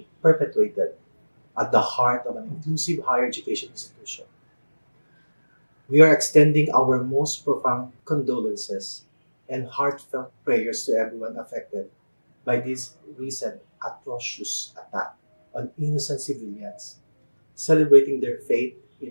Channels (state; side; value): inverted; both; correlation -1.00